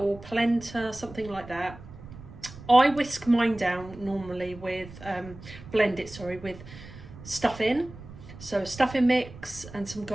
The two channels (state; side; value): noise; right; rumble, 16 dB below the sound